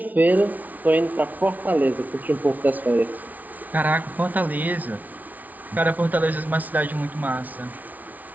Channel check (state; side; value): late; left; 0.076 ms